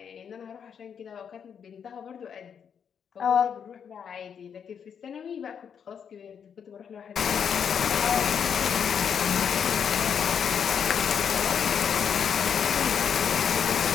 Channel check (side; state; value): right; quieter; 7.5 dB